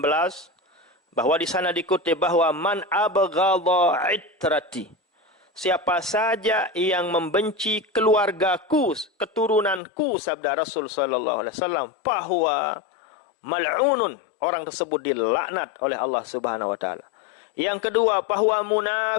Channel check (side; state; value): right; drops out; at 9.8 s